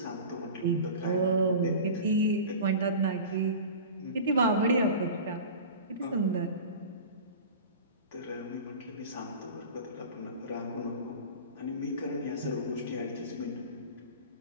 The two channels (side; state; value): both; inverted; correlation -0.35